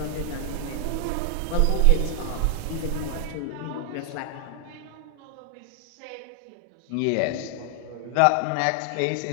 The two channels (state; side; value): different; both; correlation 0.00